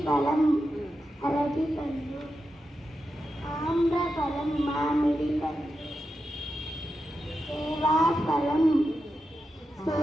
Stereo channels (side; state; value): both; normal; correlation 0.89